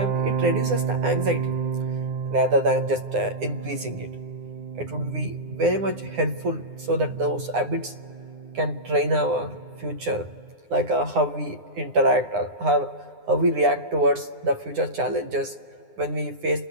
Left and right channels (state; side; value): late; left; 9.8 ms